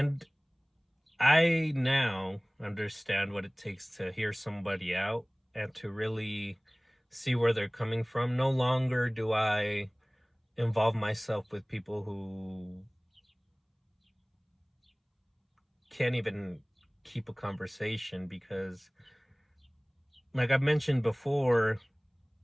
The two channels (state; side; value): identical; both; correlation 1.00